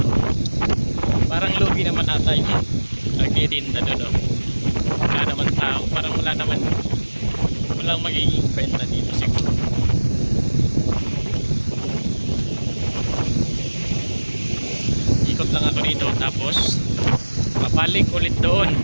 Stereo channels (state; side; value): inverted; both; correlation -1.00